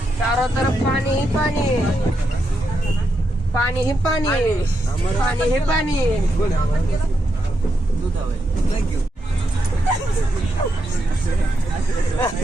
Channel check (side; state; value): both; normal; correlation 0.83